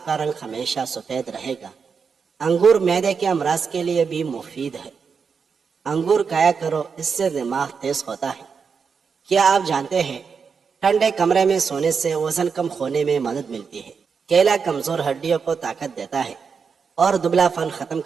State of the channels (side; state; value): left; quieter; 5.8 dB